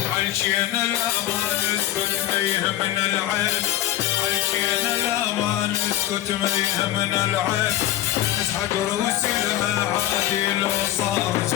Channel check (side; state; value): right; quieter; 13.7 dB